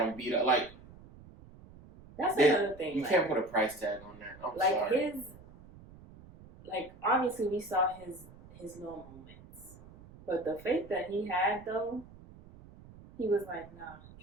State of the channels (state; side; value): noise; right; rumble, 20 dB below the sound